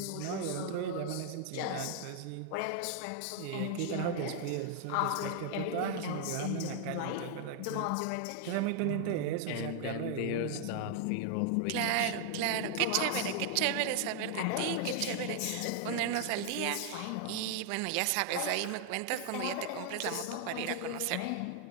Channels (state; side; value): different; both; correlation 0.00